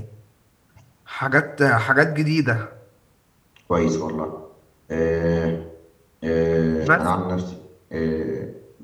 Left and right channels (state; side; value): identical; both; correlation 1.00